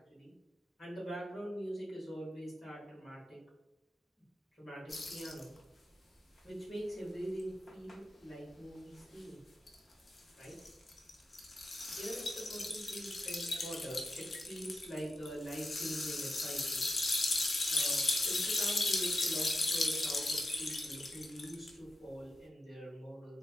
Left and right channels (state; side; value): normal; both; correlation 0.89